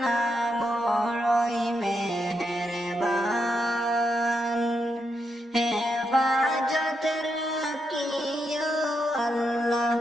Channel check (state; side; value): normal; both; correlation 0.82